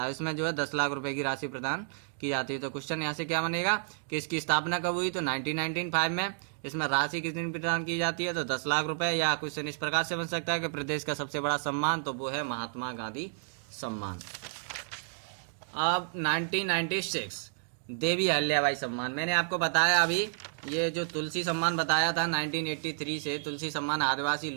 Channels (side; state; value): left; silent; digital silence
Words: है। इसमें जो है 10 लाख रुपए की राशि प्रदान की जाती है। तो क्वेश्चन यहाँ से क्या बनेगा कि इसकी स्थापना कब हुई, तो 1995 में। इसमें राशि कितनी प्रदान की जाती है, तो 10 लाख रुपए। या क्वेश्चन इस प्रकार से बन सकता है कि प्रदेश का सबसे बड़ा सम्मान, तो वो है महात्मा गांधी सम्मान। अब 1996 देवी अहिल्याबाई सम्मान। मैंने आपको बताया अभी ये जो तुलसी सम्मान बताया था 1983 से, तुलसी सम्मान आदिवासी